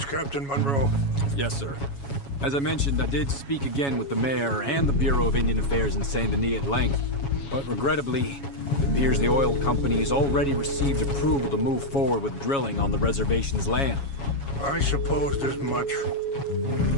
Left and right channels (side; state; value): right; late; 7.2 ms